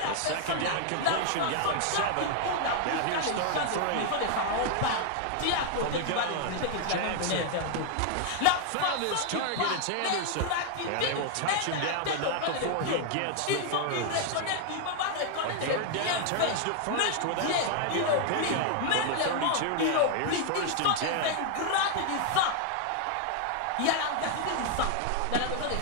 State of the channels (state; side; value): different; both; correlation 0.00